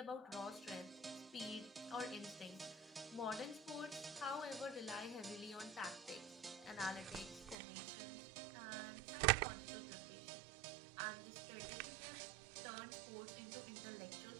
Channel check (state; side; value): drops out; left; at 7.6 s